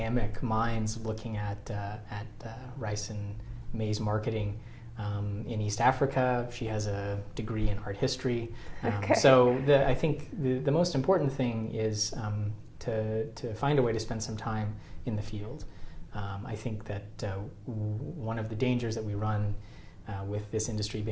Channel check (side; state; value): both; identical; correlation 1.00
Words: minds looking at rice and maize marketing in East Africa. She has a degree in art history. So I think the most important thing is to find a way to spend some time in the field. I think that one of the dangers that we run with this industry